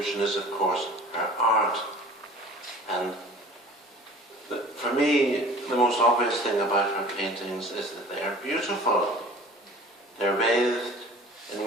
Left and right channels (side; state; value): both; normal; correlation 0.44